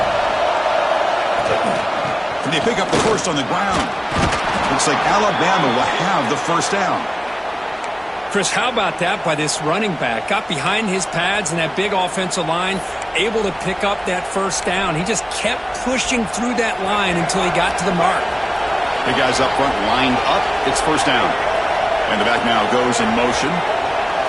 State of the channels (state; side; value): identical; both; correlation 1.00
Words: And they pick up the first on the ground. Looks like Alabama will have the first down. Chris, how about that by this running back? Got behind his pads and that big offensive line, able to pick up that first down. He just kept pushing through that line until he got to the mark. The guys up front lined up. It's first down. And the back now goes in motion.